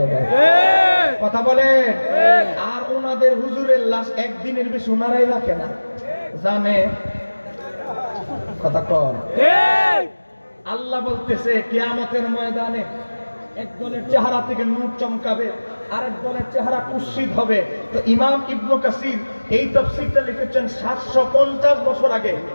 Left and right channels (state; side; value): inverted; both; correlation -1.00